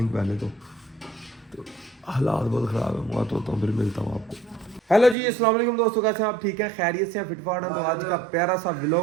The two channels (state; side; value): drops out; left; at 5.2 s